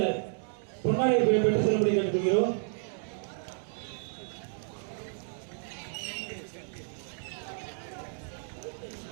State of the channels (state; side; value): silent; left; digital silence